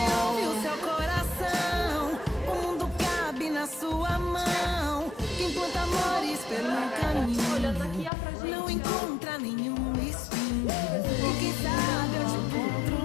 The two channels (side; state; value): right; drops out; at 8.1 s